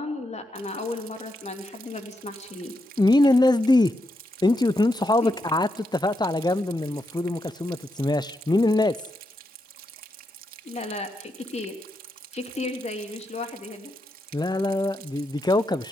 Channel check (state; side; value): normal; both; correlation 0.83